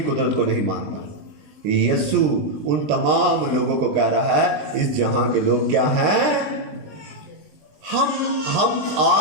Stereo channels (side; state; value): left; late; 20 ms